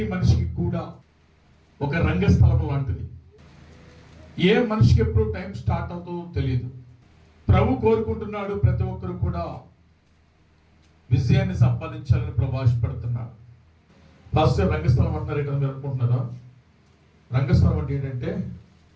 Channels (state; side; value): identical; both; correlation 1.00